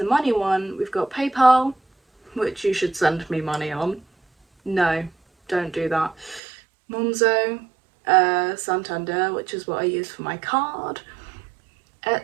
money one, we've got PayPal, which you should send me money on. No, don't do that. Monzo, Santander, which is what I use for my card.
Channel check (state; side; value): drops out; left; at 6.4 s